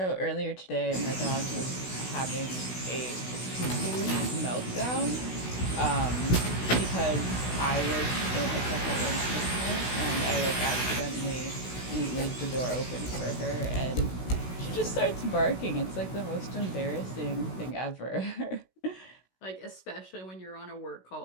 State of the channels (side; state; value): right; late; 16 ms